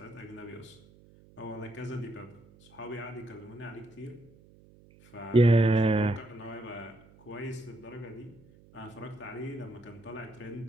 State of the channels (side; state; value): right; noise; hum, 25 dB below the sound